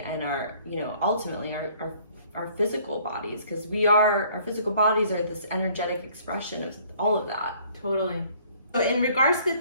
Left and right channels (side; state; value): both; inverted; correlation -0.58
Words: and our, you know, ultimately our physical bodies, because our physical bodies are this energetic expression of all of that. Totally. So in regards to the